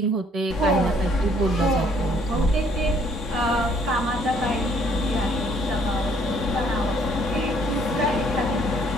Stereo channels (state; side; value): normal; both; correlation 0.63